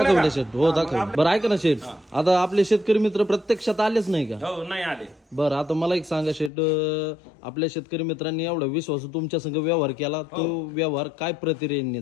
शेठ. हो, दाखवले. बरं, ऐका ना शेठ, आता आपले शेतकरी मित्र प्रत्यक्षात आलेच नाही का? हो, नाही आले. बरं, आता मला एक सांगा शेठ, आपल्या शेतकरी मित्रांनी एवढा विश्वास तुमच्या संग व्यवहार केला, तो व्यवहार काय प्रतिक्रियेने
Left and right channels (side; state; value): right; drops out; at 6.5 s